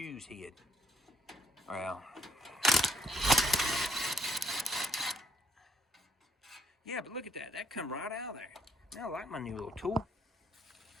hid. Well, yeah, but look at that. That come right out of there. I like my new little tool.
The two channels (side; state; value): both; normal; correlation 0.69